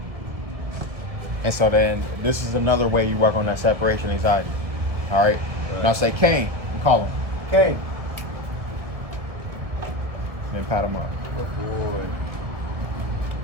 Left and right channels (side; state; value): left; late; 1.7 ms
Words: And so then this is another way you work on that separation anxiety. All right? Now say, Caine. You call him. Caine. Then pat him up. Good boy.